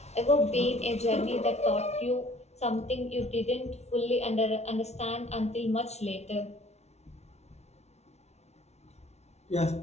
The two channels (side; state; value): right; late; 0.31 ms